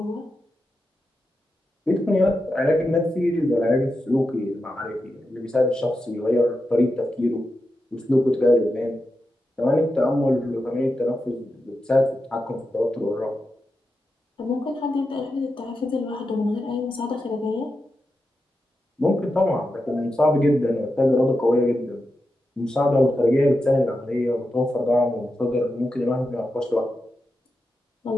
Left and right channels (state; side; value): normal; both; correlation 0.89